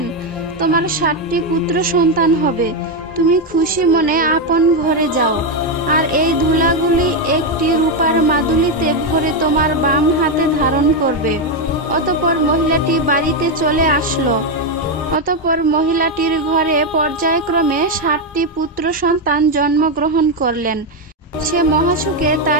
তোমার 60টি পুত্র সন্তান হবে। তুমি খুশি মনে আপন ঘরে যাও, আর এই ধুলাগুলি একটি রূপার মাদুলিতে ভরে তোমার বাম হাতে ধারণ করবে। অতঃপর মহিলাটি বাড়িতে চলে আসলো। অতঃপর মহিলাটির ঘরে পর্যায়ক্রমে 60টি পুত্র সন্তান জন্মগ্রহণ করলেন। সে মহাসুখে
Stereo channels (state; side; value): normal; both; correlation 0.05